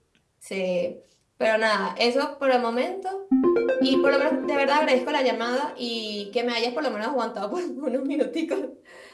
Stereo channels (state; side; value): identical; both; correlation 1.00